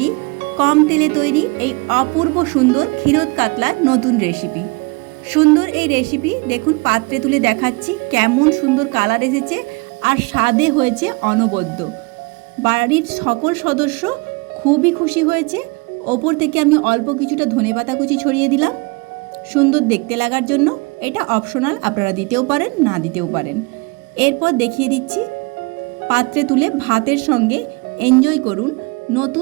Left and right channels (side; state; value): left; quieter; 28.5 dB